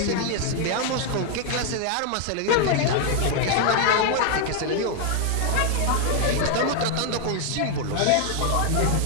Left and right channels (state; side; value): different; both; correlation 0.00